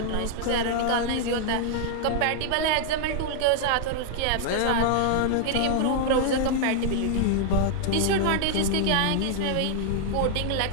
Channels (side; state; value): both; different; correlation -0.01